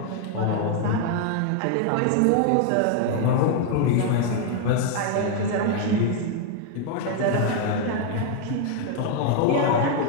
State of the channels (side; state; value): both; different; correlation 0.00